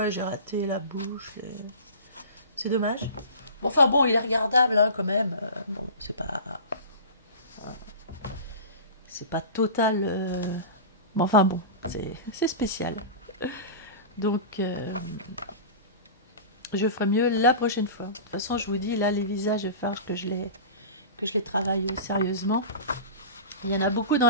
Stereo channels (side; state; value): both; inverted; correlation -0.33